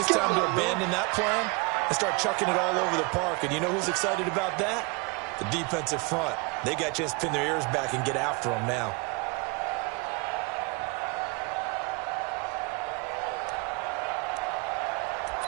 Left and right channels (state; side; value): quieter; left; 28.9 dB